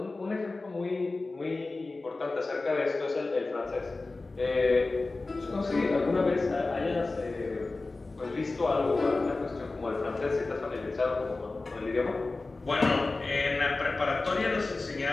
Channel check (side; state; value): right; quieter; 3.4 dB